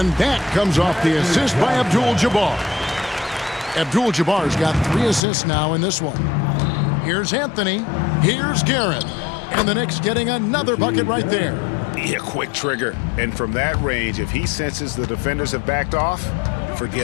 that comes off the assist by Abdul-Jabbar. Abdul-Jabbar's got 3 assists now in this one. Here's Anthony. Here's Guerin. And the Knicks getting another bucket right there. Yeah, quick trigger. And from that range, if he senses the defenders have backed off,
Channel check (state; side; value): drops out; right; at 5.2 s